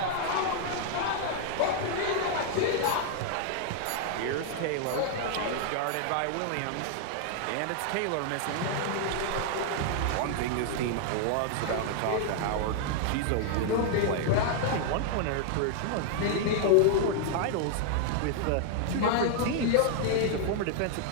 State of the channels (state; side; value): different; both; correlation 0.00